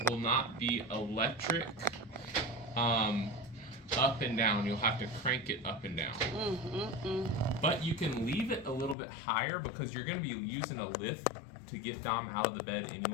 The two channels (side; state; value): right; drops out; at 9.0 s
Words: will not be electric up and down. You'll have to crank it up and down. But you can leave it a little bit higher because you're going to be using a lift to get Dom out of the bed